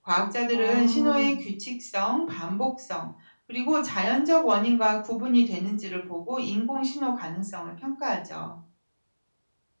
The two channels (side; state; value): both; inverted; correlation -1.00